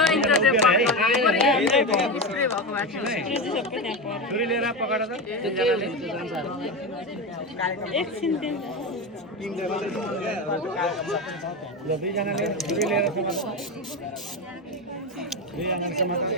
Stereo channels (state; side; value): normal; both; correlation 0.17